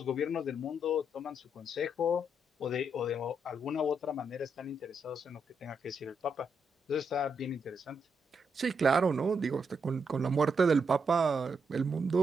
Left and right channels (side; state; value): both; normal; correlation 0.80